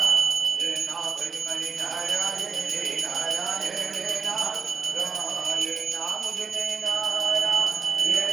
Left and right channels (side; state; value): left; quieter; 5.9 dB